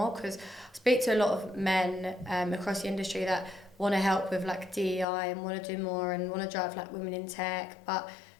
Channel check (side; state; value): right; drops out; at 5.1 s